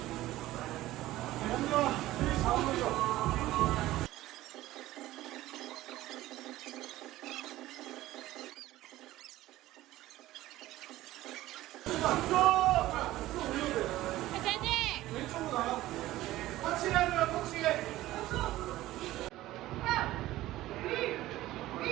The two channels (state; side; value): quieter; left; 16.0 dB